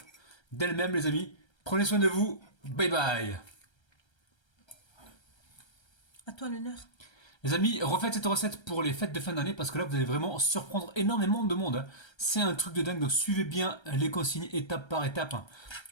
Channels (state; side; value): late; right; 1.3 ms